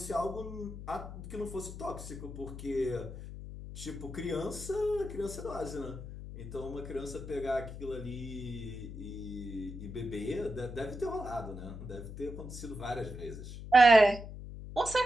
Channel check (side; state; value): left; noise; hum, 10 dB below the sound